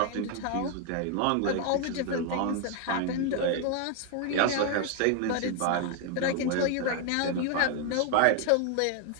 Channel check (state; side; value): different; both; correlation 0.01